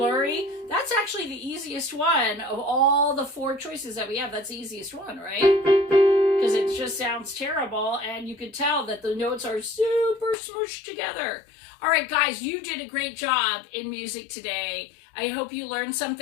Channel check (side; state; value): right; drops out; at 10.4 s